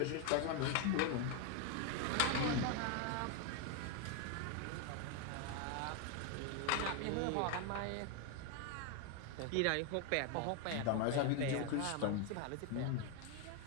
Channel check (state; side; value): different; both; correlation 0.01